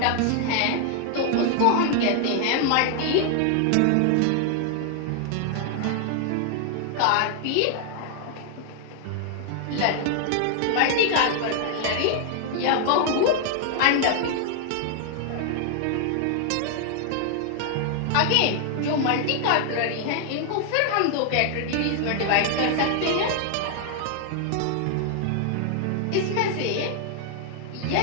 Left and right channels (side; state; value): both; different; correlation 0.00